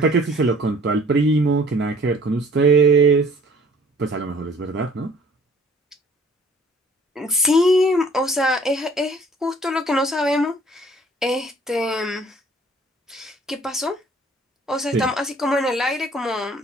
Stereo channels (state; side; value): normal; both; correlation 0.54